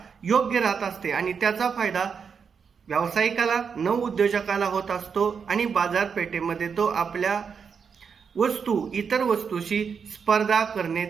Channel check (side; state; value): left; quieter; 6.3 dB